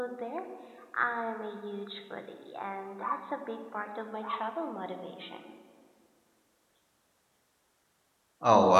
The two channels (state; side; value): identical; both; correlation 1.00